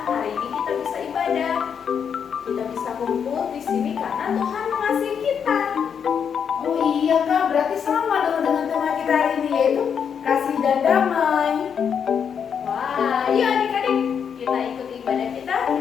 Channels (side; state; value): right; quieter; 7.3 dB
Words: hari ini kita bisa ibadah. Kita bisa kumpul di sini karena Tuhan mengasihi kita. Oh iya kak, berarti sama dong dengan tema kita hari ini, yaitu kasih dan damai. Wah, yuk adik-adik, kita ikuti ibadah kita